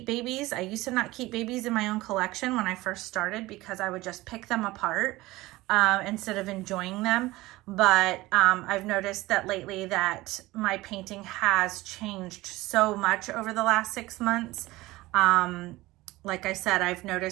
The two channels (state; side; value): quieter; left; 19.1 dB